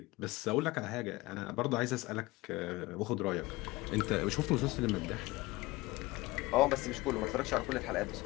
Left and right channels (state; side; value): quieter; right; 20.9 dB